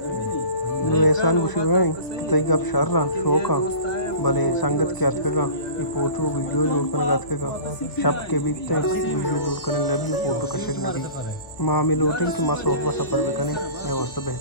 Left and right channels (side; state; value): right; late; 1.2 ms